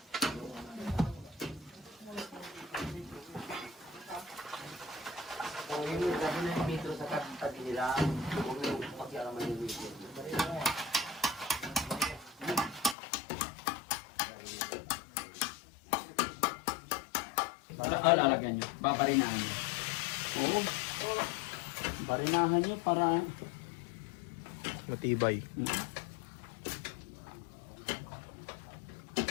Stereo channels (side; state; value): right; drops out; at 13.0 s